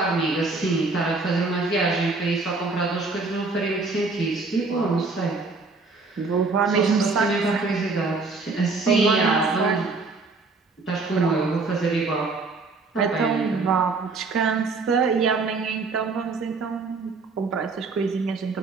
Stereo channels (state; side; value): quieter; left; 3.9 dB